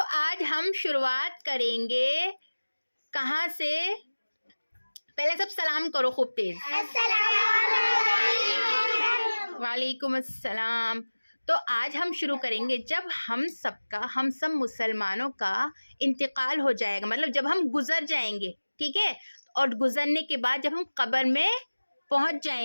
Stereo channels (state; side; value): inverted; both; correlation -1.00